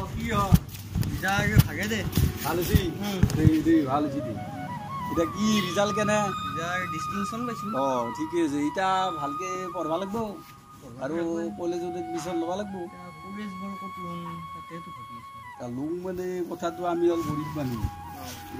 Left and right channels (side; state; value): both; identical; correlation 1.00